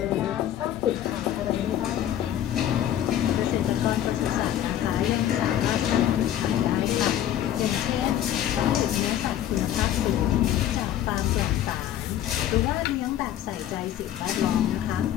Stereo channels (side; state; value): right; quieter; 11.3 dB